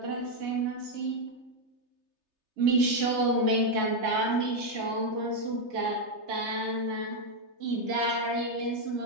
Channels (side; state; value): left; late; 3.3 ms